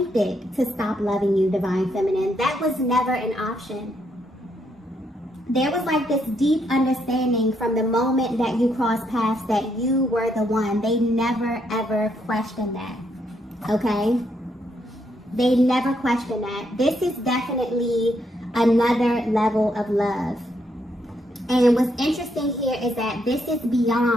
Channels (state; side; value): normal; both; correlation 0.76